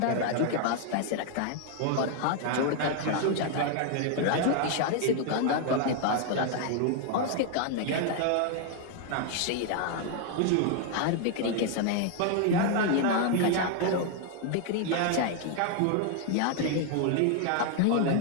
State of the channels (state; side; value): different; both; correlation 0.00